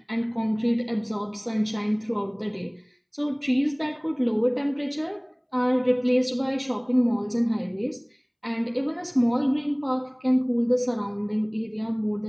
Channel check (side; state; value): both; identical; correlation 1.00